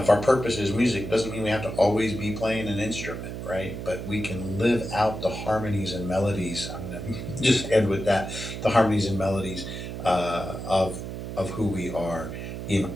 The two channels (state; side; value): noise; right; hum, 7 dB below the sound